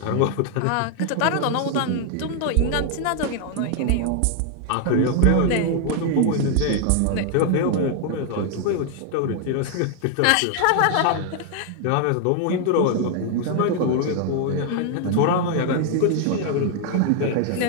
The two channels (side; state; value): both; different; correlation 0.00